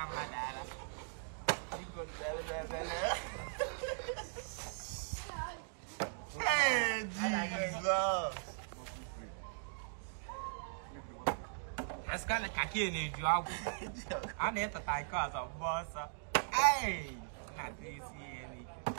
mà đã đó. Đi con về. Hey, Jesus. Askana kaki ni jua. Ana tai ka za boss. Hey. Na disi ni.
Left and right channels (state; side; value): silent; left; digital silence